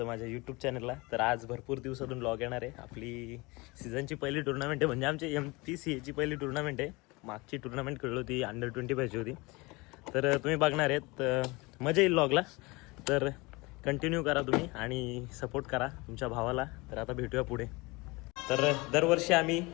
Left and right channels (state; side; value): quieter; right; 24.6 dB